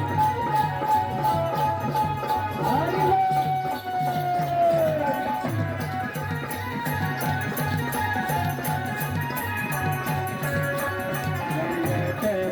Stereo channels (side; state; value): both; identical; correlation 1.00